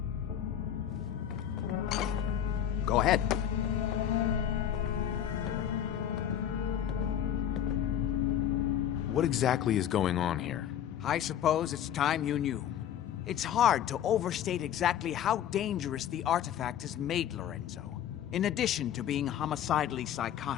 Go ahead. What exactly is going on here? I suppose it's time you knew. It's hard to overstate exactly how dangerous the artifact has made Lorenzo. In addition to being homicidally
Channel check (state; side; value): quieter; right; 10.1 dB